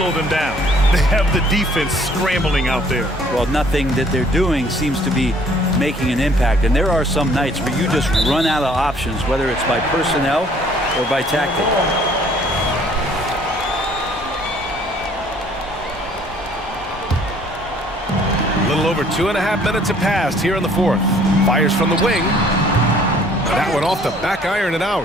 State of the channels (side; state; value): both; normal; correlation 0.58